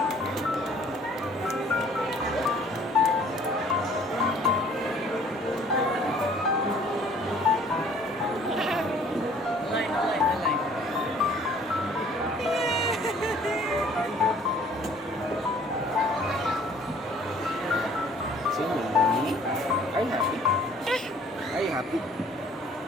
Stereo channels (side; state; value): both; normal; correlation 0.56